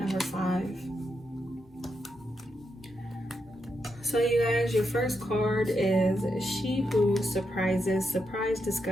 5. So you guys, your first card is She Who Surprises, Surprise,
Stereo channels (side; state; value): both; normal; correlation 0.84